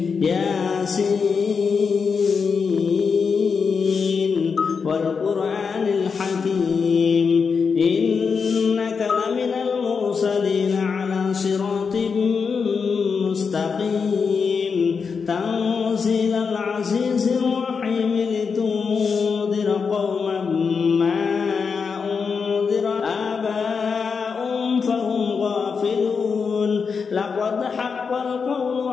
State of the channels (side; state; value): right; quieter; 5.6 dB